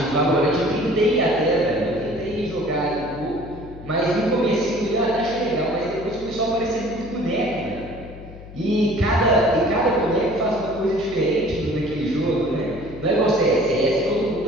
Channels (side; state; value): left; noise; hum, 16 dB below the sound